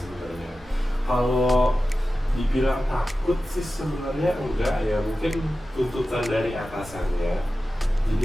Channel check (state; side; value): normal; both; correlation 0.94